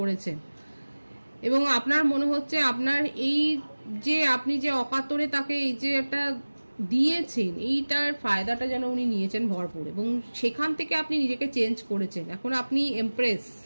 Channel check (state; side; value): inverted; both; correlation -1.00